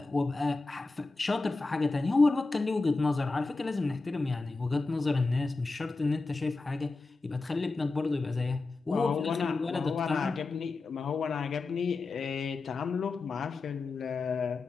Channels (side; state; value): right; quieter; 3.6 dB